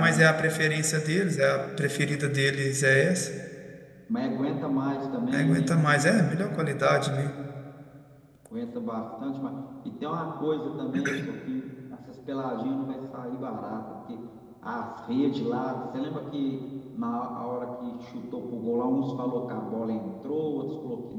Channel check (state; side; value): identical; both; correlation 1.00